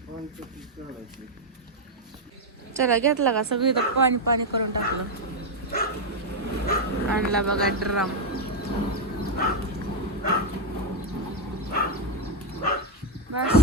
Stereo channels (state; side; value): normal; both; correlation 0.02